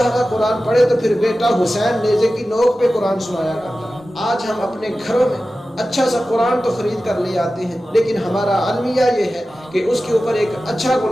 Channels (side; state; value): both; normal; correlation 0.95